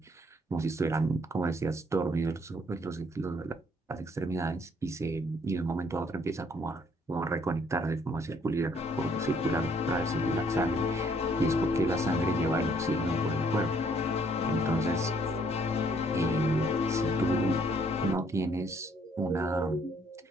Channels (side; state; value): both; normal; correlation 0.65